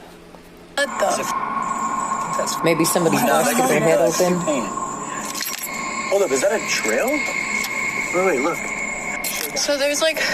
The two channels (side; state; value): both; identical; correlation 1.00